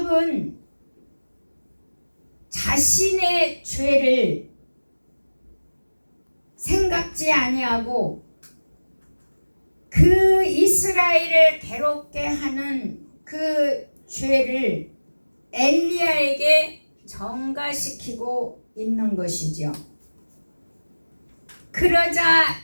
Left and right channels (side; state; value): both; inverted; correlation -1.00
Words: 자신의 죄를 생각지 아니하고 그 이스라엘을 괴롭게 하는 그 죄를 엘리야에게 전가시키고 있는 것이죠. 그러자